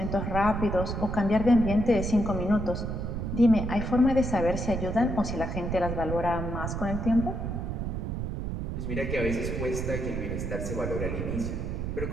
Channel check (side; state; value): right; noise; rumble, 3 dB below the sound